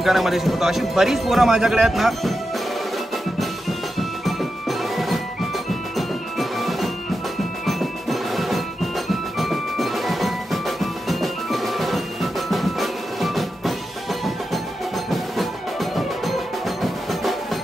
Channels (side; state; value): both; normal; correlation 0.89